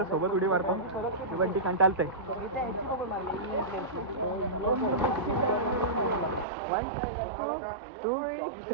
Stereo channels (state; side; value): drops out; left; at 6.5 s